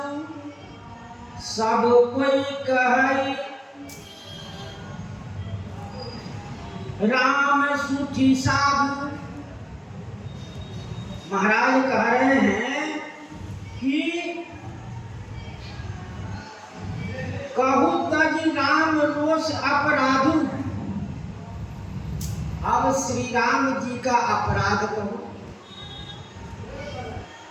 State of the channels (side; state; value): both; identical; correlation 1.00